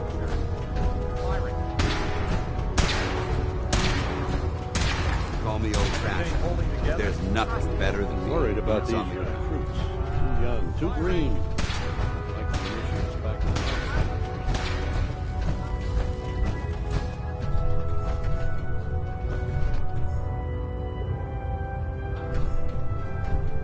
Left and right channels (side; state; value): both; identical; correlation 1.00